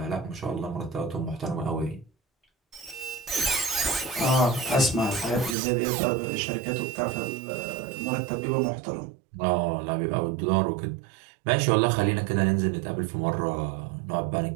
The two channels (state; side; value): drops out; left; at 5.6 s